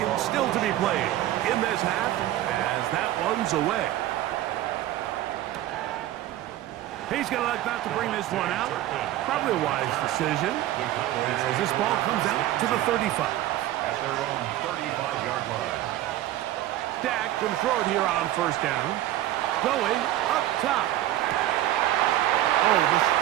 still to be played in this half as that one's away. He's going to elect not to bring this one out. Probably a wise decision as this ball comes out to the 35. At their own 35-yard line. Dak can throw it here on 1st down. Going up top. Oh, the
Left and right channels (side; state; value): left; quieter; 14.1 dB